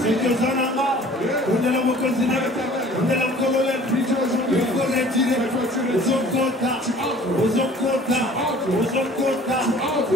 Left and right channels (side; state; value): both; normal; correlation 0.50